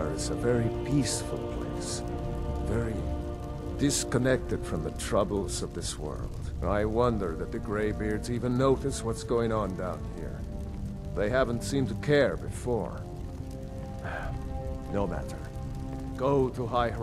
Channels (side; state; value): both; identical; correlation 1.00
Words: is a very peaceful place. Very disconnected from the troubles of this world. I wonder that the Greybeards even notice what's going on down here. They haven't seemed to care before. No matter. Go to High